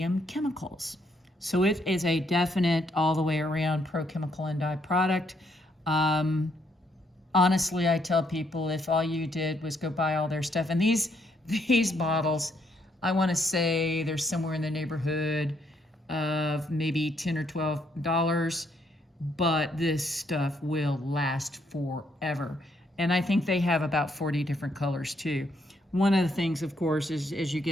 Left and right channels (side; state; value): both; normal; correlation 0.72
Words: Chemicals. So it is a definite all the way around Pro Chemical and Dye product. Honestly, I tell people if all you did was go buy all their stuff, and these bottles, I want to say they're somewhere in the neighborhood of maybe $10 or $12, but this stuff will last forever. And I think they have about 40 different colors too. One of the things, of course, is as you